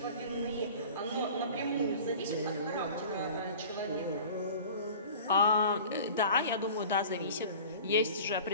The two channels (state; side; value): inverted; both; correlation -0.41